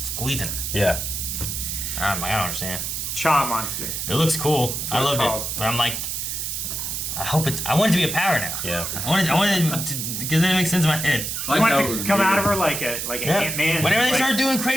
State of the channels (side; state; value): right; noise; hiss, 3 dB below the sound